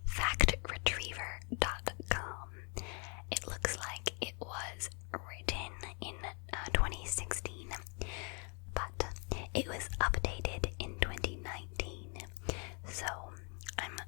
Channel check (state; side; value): quieter; right; 36.1 dB